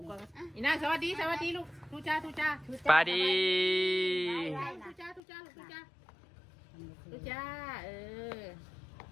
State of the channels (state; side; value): drops out; right; at 5.2 s